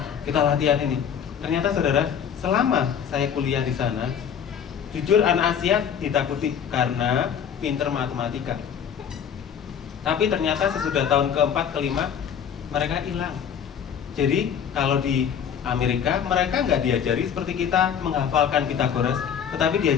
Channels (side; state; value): right; quieter; 8.0 dB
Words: kita latihan ini. Ternyata saudara, selama saya kuliah di sana, jujur anak Asia ditakuti karena pinter matematika. Tapi ternyata sesudah tahun keempat, kelima, mereka hilang. Jadi kalau di Amerika, mereka nggak diajari seperti kita menghafalkan Pythagoras, tetapi